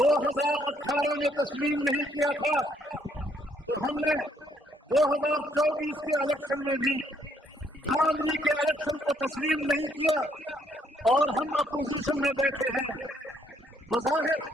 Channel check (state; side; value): normal; both; correlation 0.70